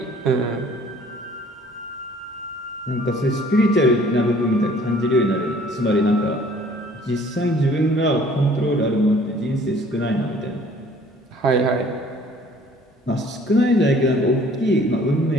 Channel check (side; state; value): both; normal; correlation 0.55